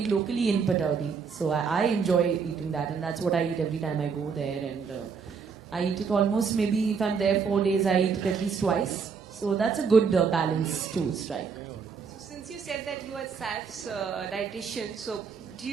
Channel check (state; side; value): quieter; left; 5.8 dB